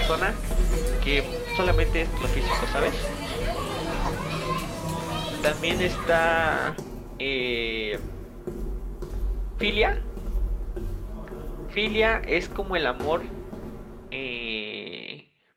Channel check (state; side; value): identical; both; correlation 1.00